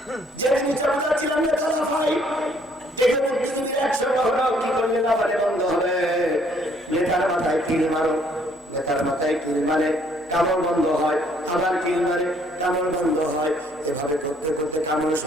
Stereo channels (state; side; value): normal; both; correlation 0.64